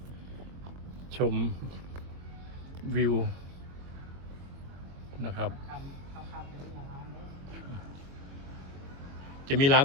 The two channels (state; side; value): late; left; 22 ms